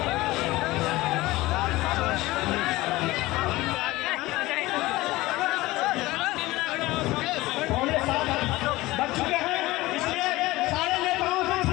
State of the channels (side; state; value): right; quieter; 19.0 dB